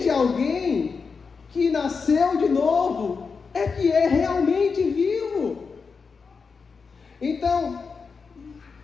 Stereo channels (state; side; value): quieter; right; 5.1 dB